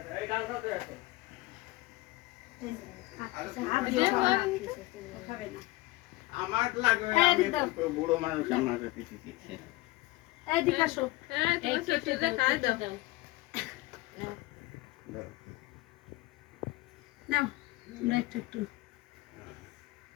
আমার লাগবে বুড়ো মানুষ আমার কিছু এদিকে আসো নাও তোমরা একটু একটু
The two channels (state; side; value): quieter; right; 19.9 dB